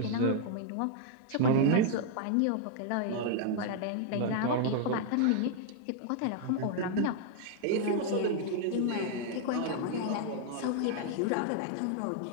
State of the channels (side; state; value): both; different; correlation 0.00